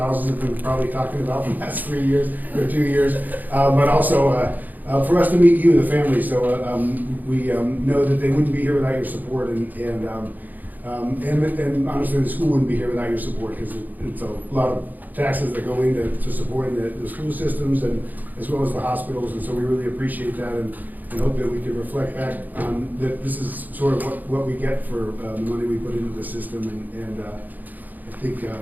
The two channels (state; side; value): late; left; 0.083 ms